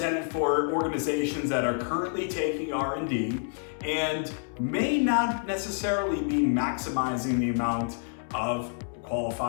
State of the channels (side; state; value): right; silent; 59 dB below the other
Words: for organizations that are currently taking R&D and may not necessarily be maximizing the amount of